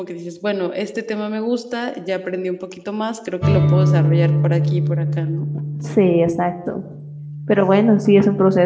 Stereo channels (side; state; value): both; identical; correlation 1.00